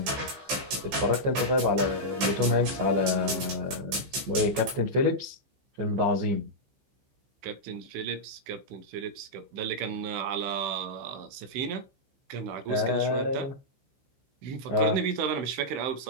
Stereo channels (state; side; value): late; left; 15 ms